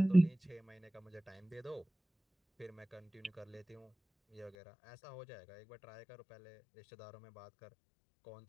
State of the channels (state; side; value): drops out; right; at 4.5 s